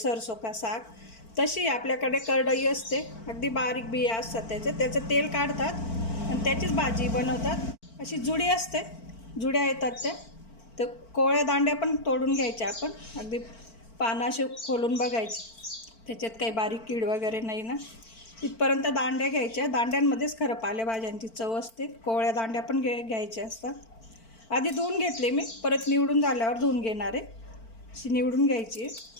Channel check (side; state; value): right; late; 4.5 ms